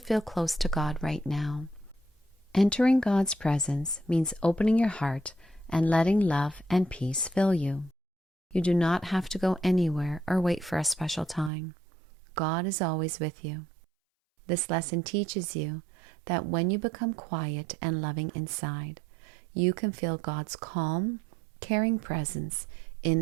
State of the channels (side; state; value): left; drops out; at 11.5 s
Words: close to God right now. Entering God's presence means opening your heart and letting love and peace fill you. You do not have to go anywhere or wait for a special time. God is always with you. This lesson teaches you that when you become quiet and loving inside, you can feel God's calm, caring presence